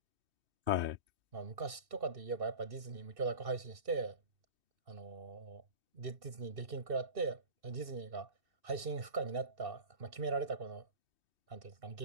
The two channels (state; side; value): late; left; 2.6 ms